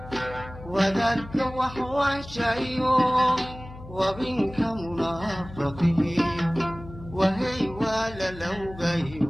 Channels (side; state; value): left; noise; hum, 15 dB below the sound